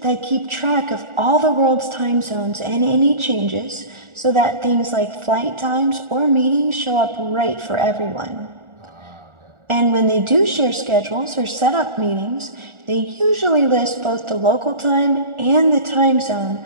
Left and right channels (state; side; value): late; left; 1.4 ms